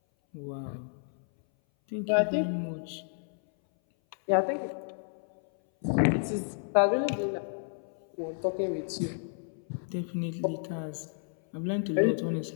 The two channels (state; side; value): silent; right; 57 dB below the other